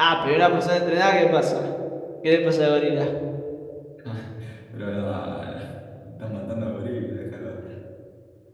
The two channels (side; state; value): both; identical; correlation 1.00